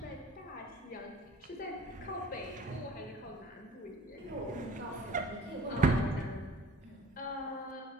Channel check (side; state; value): both; normal; correlation 0.49